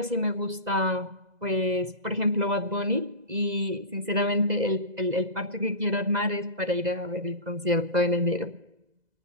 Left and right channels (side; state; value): left; late; 2.0 ms